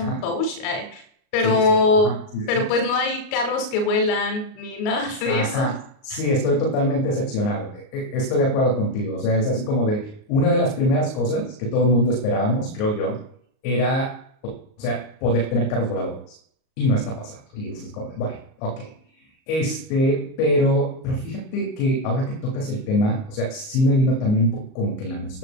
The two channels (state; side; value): late; right; 38 ms